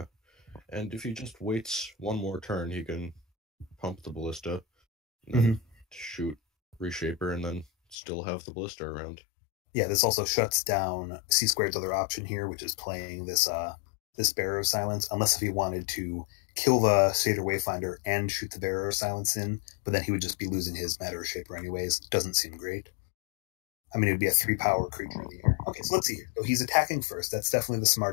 and if he just waits one more turn, he can pump the Ballista, and then shoot Reshaper, and then still have the Ballista around. Yeah, this also shuts down Csquared's other option here, which is playing this Bearer of Silence, unless if he wanted to kill the Satyr Wayfinder and shoot the Bearer of Silence in, but then he would just be losing his Matter Reshaper anyways. Doesn't seem great. I mean, it would be a 3-power creature in the air. Okay, so let's see here. So he's attacking first. That's definitely the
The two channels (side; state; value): right; drops out; at 8.0 s